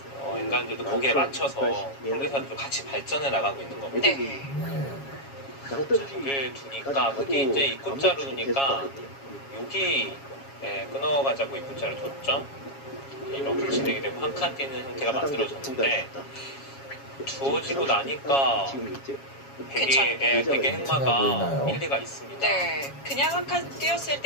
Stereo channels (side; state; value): right; late; 7.3 ms